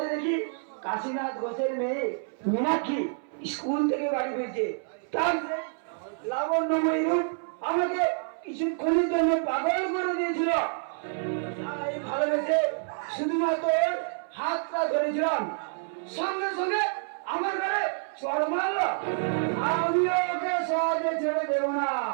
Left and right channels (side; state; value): left; silent; 59 dB below the other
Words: দেখি কাশীনাথ ঘোষের মেয়ে মীনাক্ষী স্কুল থেকে বাড়ি ফিরছে। তার সেই লাবণ্যময়ী রূপ আমাকে কিছুক্ষণের জন্য পাগল করে দিয়েছিল। তাই ভালোবেসে শুধুমাত্র ওর হাতটা ধরেছিলাম, সঙ্গে সঙ্গে আমার ঘরে চড় মারলো। আমিও ওকে সহজে ছেড়ে দেব না,